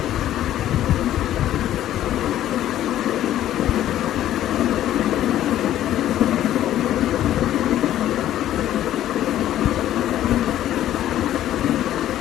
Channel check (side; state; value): right; quieter; 12.5 dB